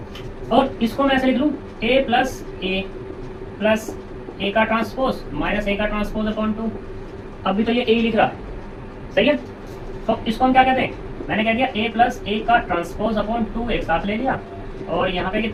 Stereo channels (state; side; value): identical; both; correlation 1.00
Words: और इसको मैं ऐसे लिख लूं, ए प्लस ए का ट्रांसपोज माइनस ए का ट्रांसपोज अपॉन 2, अभी तो ये ए लिख रहा है, सही है। तो इसको हम क्या कहते हैं, मैंने कह दिया ए प्लस ए का ट्रांसपोज अपॉन 2 एक साथ ले लिया, और यहाँ पे